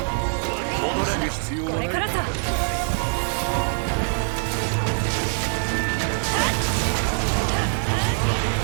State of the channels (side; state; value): left; silent; 63 dB below the other